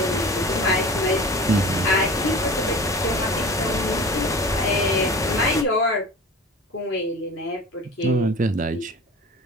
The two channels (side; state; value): both; normal; correlation 0.38